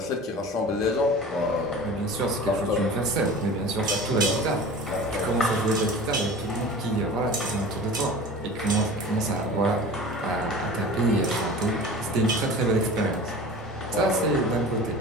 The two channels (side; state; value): both; normal; correlation 0.38